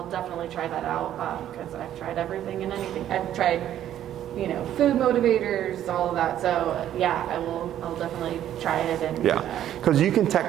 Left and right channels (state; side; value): quieter; left; 11.4 dB